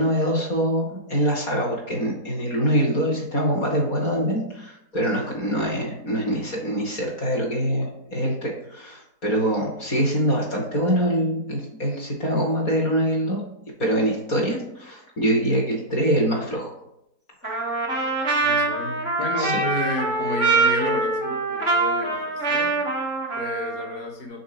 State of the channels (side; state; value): right; late; 4.2 ms